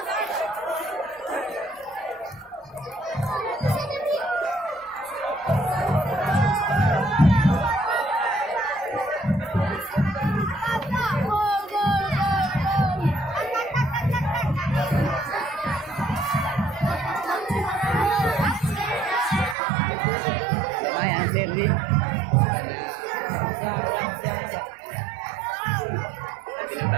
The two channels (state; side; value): drops out; left; at 19.6 s